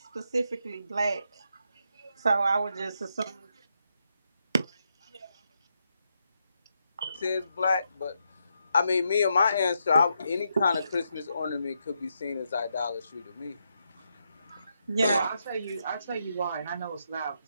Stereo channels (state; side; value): inverted; both; correlation -0.81